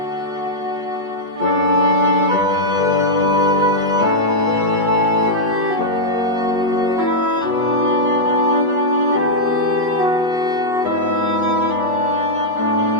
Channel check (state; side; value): late; left; 8.3 ms